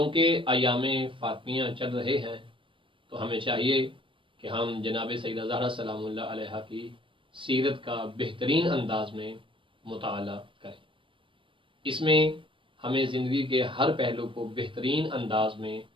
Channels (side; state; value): left; late; 0.25 ms